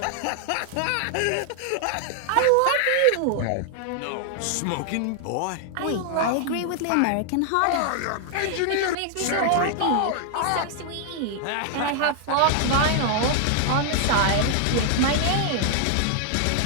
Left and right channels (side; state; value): both; different; correlation 0.00